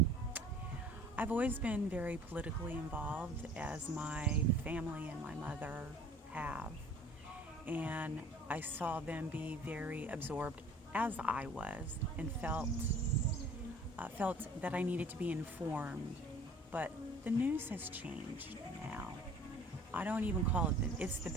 I've always been very politically involved, as my family and my mother have. And I saw them be very absorbed, as I was, and felt that I needed to be informed. But the news has changed now. I don't even call it's the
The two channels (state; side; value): normal; both; correlation 0.50